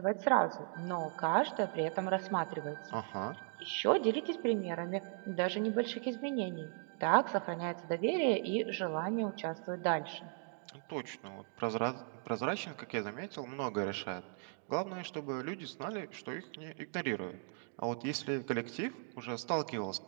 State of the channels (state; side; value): silent; left; 53 dB below the other